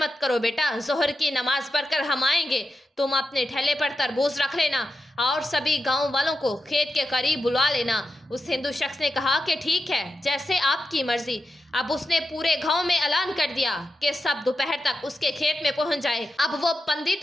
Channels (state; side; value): normal; both; correlation 0.89